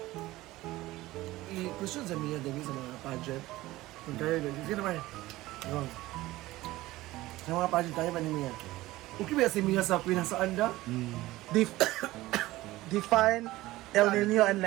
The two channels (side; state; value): left; quieter; 17.7 dB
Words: I-question sa Mia, David, sa mga pageant. Kung tayo, sige naman. Go. Sa mga pageant tayo ba ni Mia? Okay ba si Mia sa Queen sa Anda? Define El Nino and La